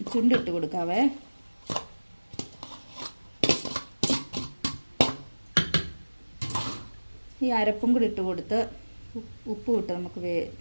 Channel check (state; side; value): inverted; both; correlation -1.00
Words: ചുണ്ടിട്ട് കൊടുക്കാവേ. ഈ അരപ്പും കൂടി ഇട്ട് കൊടുത്ത് ഉപ്പും ഇട്ട് നമുക്ക്